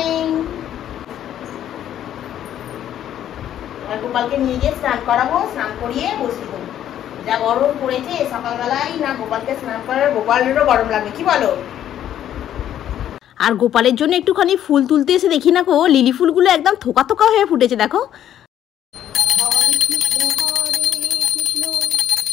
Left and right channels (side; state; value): right; quieter; 11.0 dB